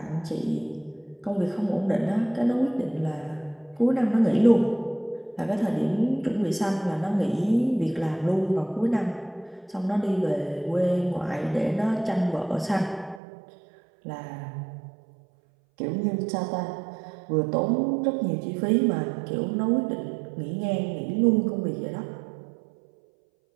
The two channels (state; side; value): drops out; left; at 13.2 s